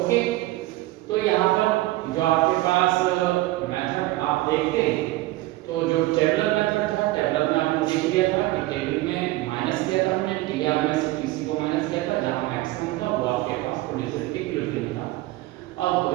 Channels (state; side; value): quieter; left; 18.2 dB